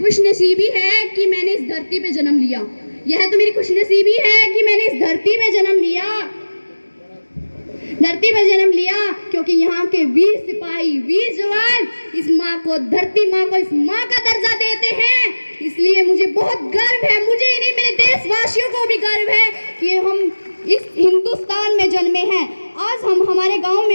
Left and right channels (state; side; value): inverted; both; correlation -1.00